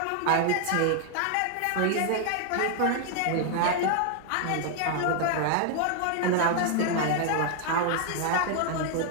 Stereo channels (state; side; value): different; both; correlation 0.00